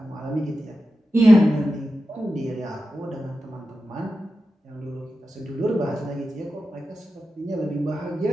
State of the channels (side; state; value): both; normal; correlation 0.91